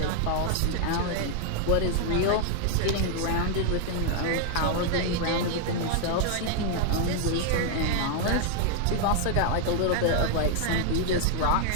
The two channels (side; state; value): both; different; correlation 0.00